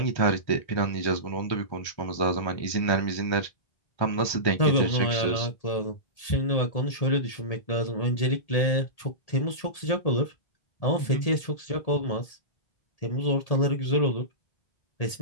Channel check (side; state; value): right; late; 1.8 ms